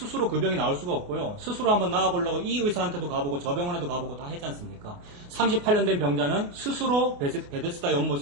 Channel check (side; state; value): left; late; 28 ms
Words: 그 병이 나올 수가 없고요. 스스로 한번 나와보려고 이 의사한테도 가보고 저 병원에도 가보고 다 했지 않습니까? 38년 된 병자는 스스로 베데스다